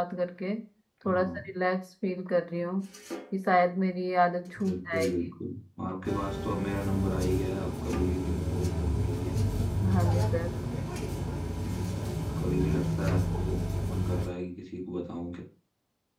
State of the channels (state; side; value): identical; both; correlation 1.00